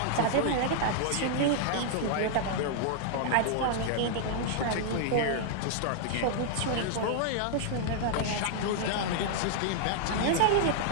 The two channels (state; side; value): different; both; correlation -0.01